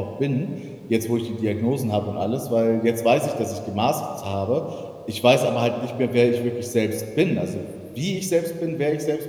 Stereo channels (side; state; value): both; identical; correlation 1.00